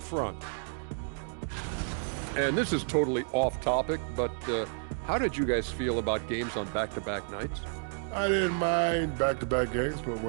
And this is totally off topic, but how did you guys feel about games on back-to-back nights? I didn't mind back-to-back games, but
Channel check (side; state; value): left; silent; digital silence